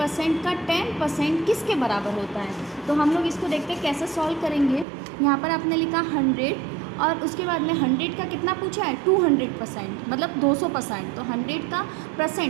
का 10% किसके बराबर होता है। तो हम लोग इसको देखते हैं कैसे सॉल्व करेंगे। यहाँ पर आपने लिखा 100 और उसके बाद में 100 का कितना पूछा है 200%, मतलब 200%। तो 100 का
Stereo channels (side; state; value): left; drops out; at 4.9 s